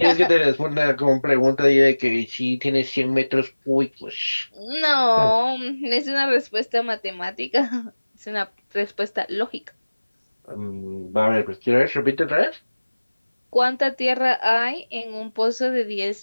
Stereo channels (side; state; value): both; inverted; correlation -1.00